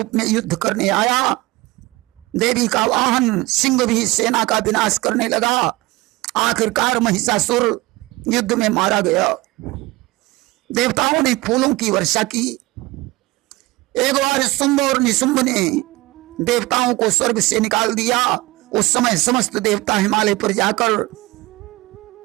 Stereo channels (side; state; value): left; quieter; 20.3 dB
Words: में युद्ध करने आया। देवी का वाहन सिंह भी सेना का विनाश करने लगा। आखिरकार महिषासुर युद्ध में मारा गया। देवताओं ने फूलों की वर्षा की। एक बार शुंभ और निशुंभ ने देवताओं को स्वर्ग से निकाल दिया। उस समय समस्त देवता हिमालय पर जाकर